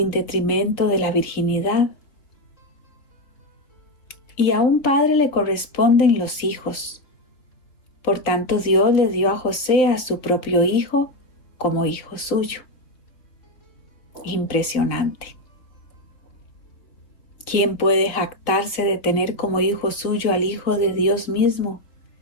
detrimento de la virginidad. Y a un padre le corresponden los hijos. Por tanto, Dios le dio a José a su propio hijo como hijo suyo. Impresionante. ¿Quién puede jactarse de tener como hijo suyo al Hijo de Dios mismo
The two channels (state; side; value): late; right; 3.9 ms